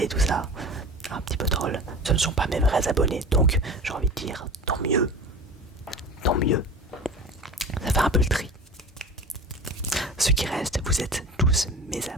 tout ça, un petit peu troll, ce ne sont pas mes vrais abonnés. Donc, j'ai envie de dire, tant mieux. Ça fait un peu le tri. Ce qui reste, vous êtes tous mes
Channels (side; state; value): both; normal; correlation 0.34